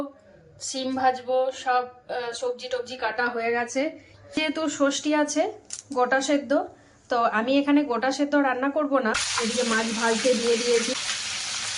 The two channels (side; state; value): both; identical; correlation 1.00